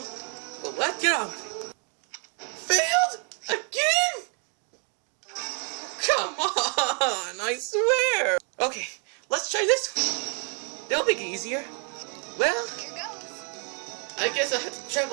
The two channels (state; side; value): quieter; left; 38.9 dB